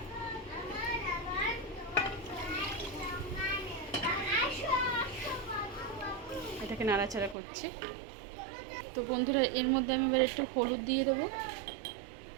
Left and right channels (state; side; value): drops out; left; at 7.4 s